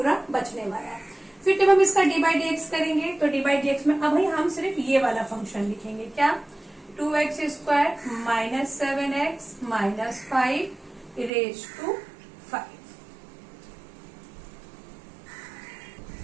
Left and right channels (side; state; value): left; drops out; at 11.3 s